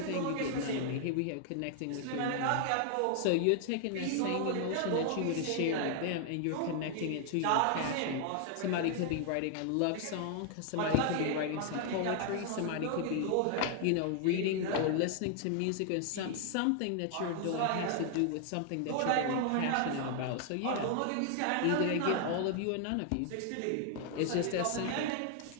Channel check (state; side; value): different; both; correlation 0.00